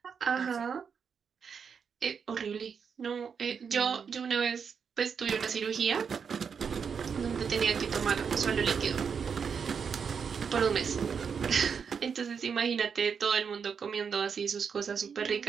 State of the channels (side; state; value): left; quieter; 6.5 dB